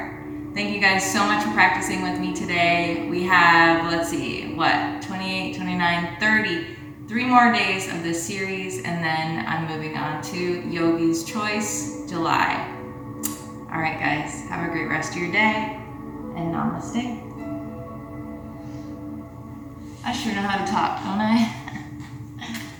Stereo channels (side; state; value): both; identical; correlation 1.00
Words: Thank you guys so much for practicing with me today. We have, let's see, 28, 29, 30, 3 more days of this series, and then I'm moving on to Yogi's Choice, July. All right, guys, have a great rest of your day, and namaste. I sure know how to talk, don't I?